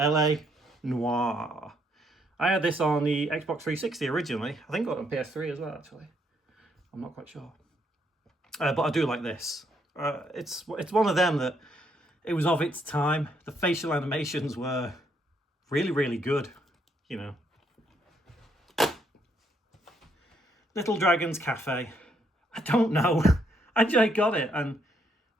Noir. I had this on the Xbox 360 originally. I think I got it on PS3 as well, actually. I'm not quite sure. But I do like this. It's one of them that it was of its time. The facial animations were really, really good, you know. Little Dragon's Cafe. I don't know. I just got it and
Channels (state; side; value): normal; both; correlation 0.73